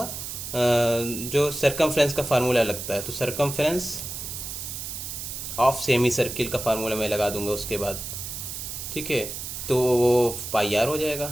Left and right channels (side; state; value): right; noise; hiss, 7 dB below the sound